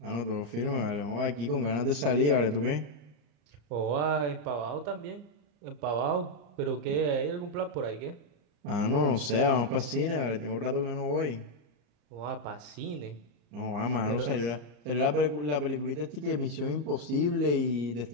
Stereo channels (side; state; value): left; late; 34 ms